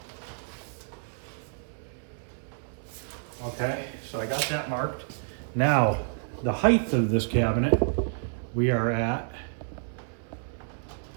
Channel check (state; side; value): silent; left; 57 dB below the other